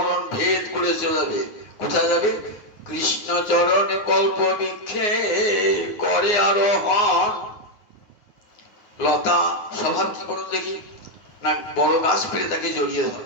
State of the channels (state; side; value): late; right; 9.6 ms